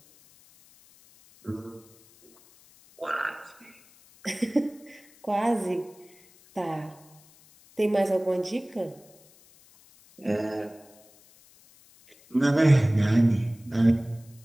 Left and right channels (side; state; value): left; noise; hiss, 27 dB below the sound